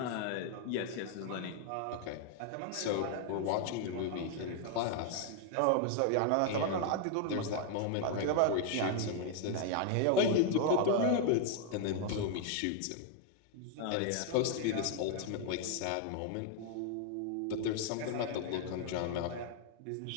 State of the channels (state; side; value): different; both; correlation 0.00